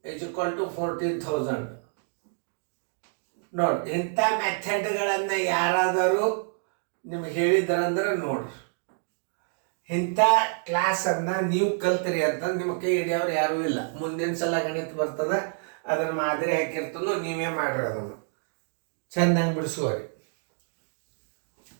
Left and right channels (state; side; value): silent; left; 60 dB below the other